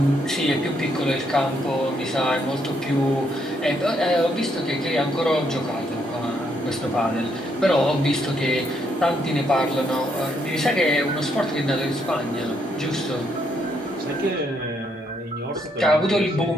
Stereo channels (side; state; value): both; normal; correlation 0.74